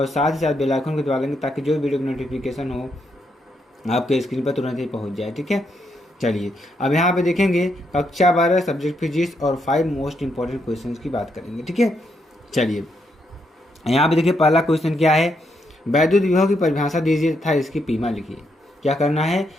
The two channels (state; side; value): normal; both; correlation 0.78